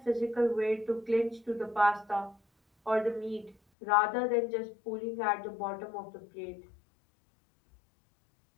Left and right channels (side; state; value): right; drops out; at 3.6 s